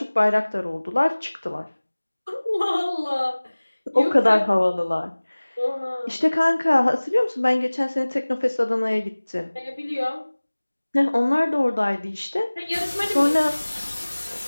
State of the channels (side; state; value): both; inverted; correlation -1.00